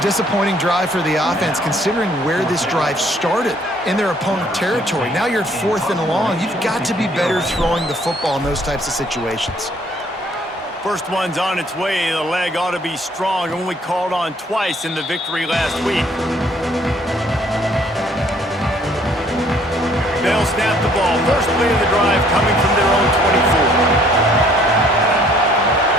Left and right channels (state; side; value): normal; both; correlation 0.61